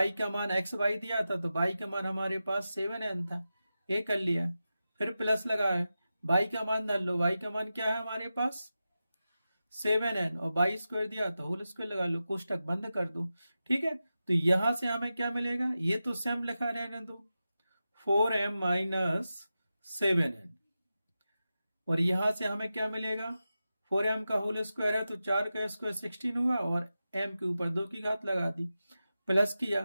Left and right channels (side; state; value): both; inverted; correlation -0.92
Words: का मान एक्स वाई दिया था तो y का मान हमारे पास 7N था, ये कर लिया, फिर प्लस लगाया, y का मान डाल लो, y का मान क्या है हमारे पास 7N और y स्क्वायर दिया तो होल स्क्वायर लगा लो, कोष्टक बंद कर दो, ठीक है। तो यहां से हमें क्या मिलेगा, ये तो सेम लिखा रहने दो 4M माइनस 7N और यहां से हमें क्या मिलेगा 4M का होल स्क्वायर है तो 4 का स्क्वायर 16 हुआ और m के ऊपर 2 की घात लगा दी, प्लस किया